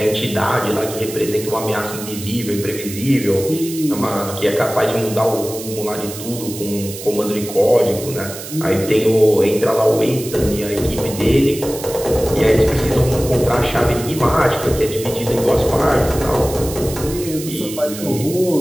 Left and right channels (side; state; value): right; noise; hiss, 11 dB below the sound